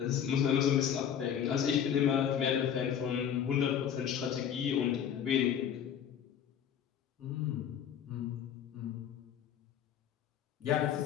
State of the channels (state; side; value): quieter; right; 8.9 dB